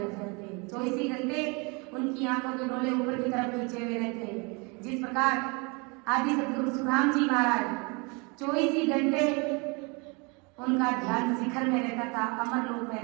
जाते हैं। 24 घंटे उनकी आंखों के डोले ऊपर की तरफ खींचे हुए रहते हैं। जिस प्रकार आदि सतगुरु सुखराम जी महाराज 24 घंटे उनका ध्यान शिखर में रहता था, अमर लोक में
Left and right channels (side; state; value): left; quieter; 30.2 dB